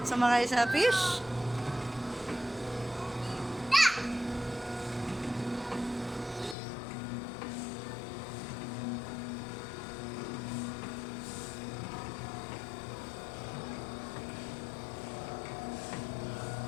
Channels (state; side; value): drops out; right; at 6.6 s